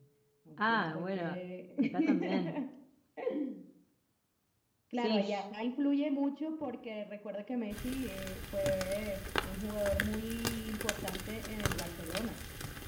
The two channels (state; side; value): identical; both; correlation 1.00